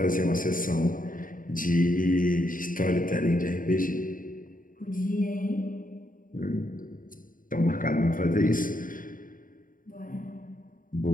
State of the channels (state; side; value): late; right; 0.40 ms